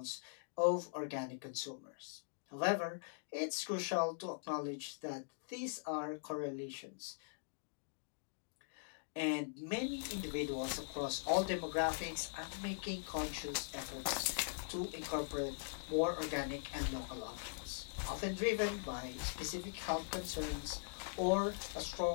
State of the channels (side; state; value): right; silent; digital silence